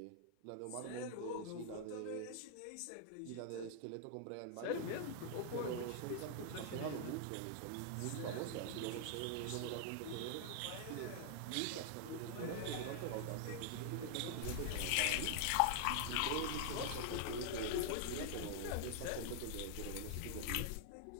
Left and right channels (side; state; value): both; different; correlation 0.00